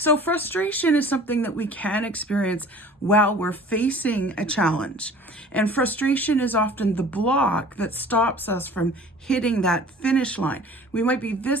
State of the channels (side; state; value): both; normal; correlation 0.46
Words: frustration is something that we can experience while we're facing a challenge. And frustration is often the block that stops us from hitting that finish line. We might be